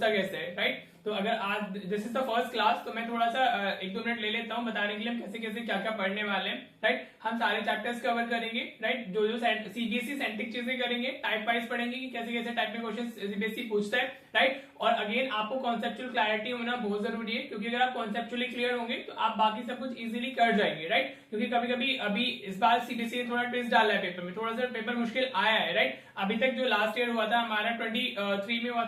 कैसे है। राइट, तो अगर आज this is the first class, तो मैं थोड़ा सा 1-2 मिनट ले लेता हूँ बताने के लिए हम कैसे कैसे क्या क्या पढ़ने वाले हैं। राइट, हम सारे चैप्टर्स कवर करेंगे। राइट, जो जो सीबीएसई सेंट्रिक चीजें करेंगे, टाइप वाइज पढ़ेंगे कि कैसे कैसे टाइप में क्वेश्चन सीबीएसई पूछता है। राइट, और अगेन आपको कॉन्सेप्चुअल क्लैरिटी होना बहुत जरूरी है, क्योंकि अगर आप कॉन्सेप्चुअली क्लियर होंगे तो आप बाकी सब कुछ इजीली कर जाएंगे। राइट, क्योंकि कभी कभी अभी इस बार सीबीएसई ने थोड़ा ट्विस्ट डाला है पेपर में, थोड़ा सा पेपर मुश्किल आया है। राइट, अभी तक जो लास्ट ईयर हुआ था हमारा 23 में हुआ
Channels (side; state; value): both; identical; correlation 1.00